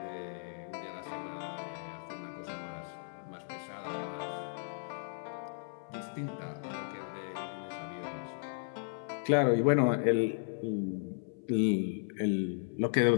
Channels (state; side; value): silent; right; 54 dB below the other